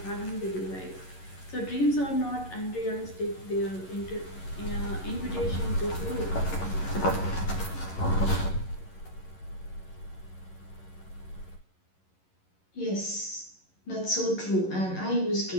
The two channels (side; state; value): right; late; 11 ms